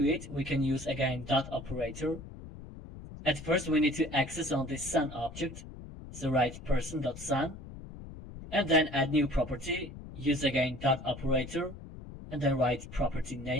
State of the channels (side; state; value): left; noise; rumble, 13 dB below the sound